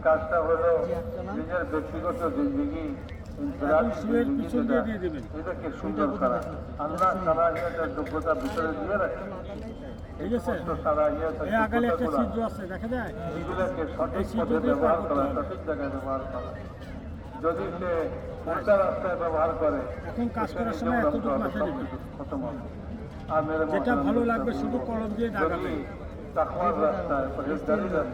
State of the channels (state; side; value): identical; both; correlation 1.00